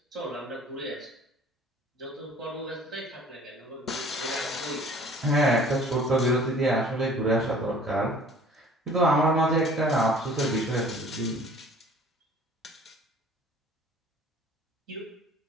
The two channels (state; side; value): normal; both; correlation 0.51